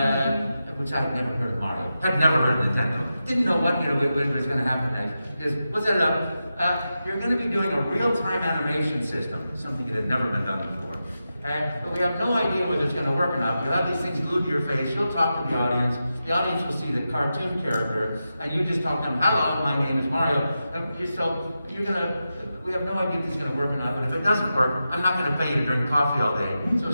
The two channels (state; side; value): inverted; both; correlation -0.90